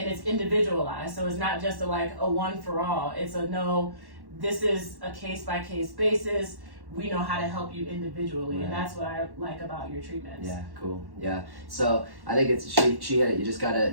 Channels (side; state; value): left; late; 1.1 ms